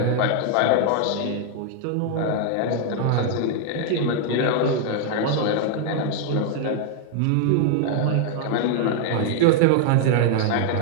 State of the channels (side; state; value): both; different; correlation 0.00